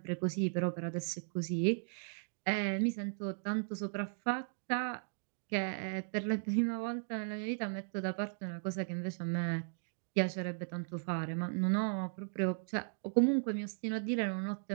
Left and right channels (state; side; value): silent; left; digital silence